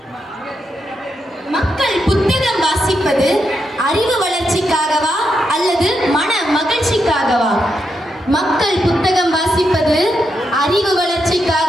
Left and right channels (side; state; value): both; normal; correlation 0.83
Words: மக்கள் புத்தகம் வாசிப்பது அறிவு வளர்ச்சிக்காகவா அல்லது மன மகிழ்ச்சிக்காகவா? மக்கள் புத்தகம் வாசிப்பது அறிவு